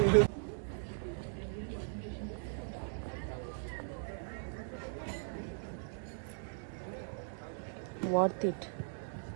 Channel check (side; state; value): left; silent; digital silence